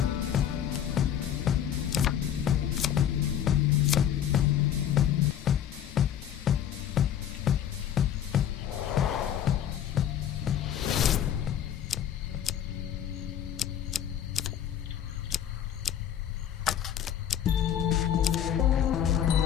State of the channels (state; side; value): quieter; right; 9.9 dB